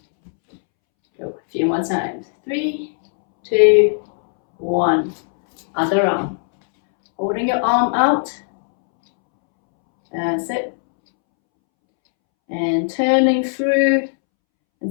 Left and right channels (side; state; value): right; silent; 67 dB below the other